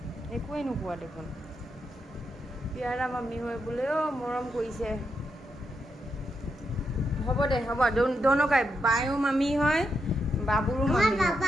একোৱে নোকোৱা দেখোন পিয়াৰা মাম্মি হয় বোলে অ মৰম কৰিছে হ'ব দে হ'ব দোনোকাই বায়ো মাম্মি হয় বাবুৰো আমার মাম্মি হয়।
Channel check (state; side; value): normal; both; correlation 0.83